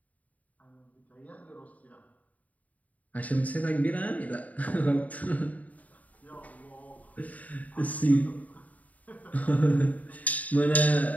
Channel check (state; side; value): late; right; 0.072 ms